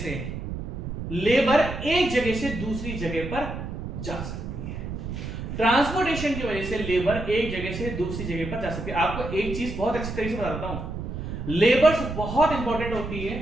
लेबर एक जगह से दूसरी जगह पर जा सकती है। ट्रांसपोर्टेशन की वजह से लेबर एक जगह से दूसरी जगह पर जा सकती है। आपको एक चीज बहुत अच्छी तरीके से बताता हूं, लेबर्स बहुत इंपॉर्टेंट होती है,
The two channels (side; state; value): right; noise; rumble, 6 dB below the sound